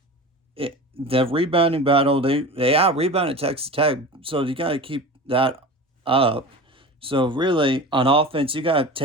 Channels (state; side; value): normal; both; correlation 0.32